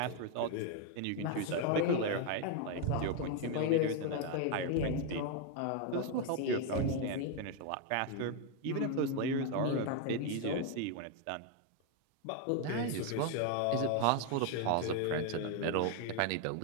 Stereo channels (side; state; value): both; different; correlation 0.01